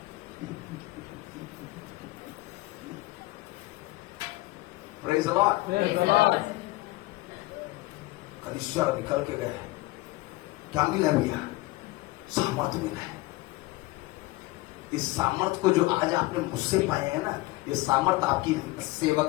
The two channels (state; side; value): quieter; right; 20.4 dB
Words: प्रेज़ द लॉर्ड। कलीसिया निकल के गए, क्या मिला भैया? सामर्थ मिला है। इस सामर्थ को जो आज आपने मुझसे पाए हैं ना, ये सामर्थ आपकी